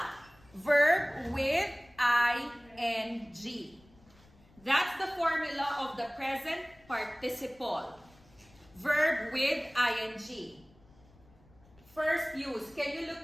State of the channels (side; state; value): left; noise; rumble, 28 dB below the sound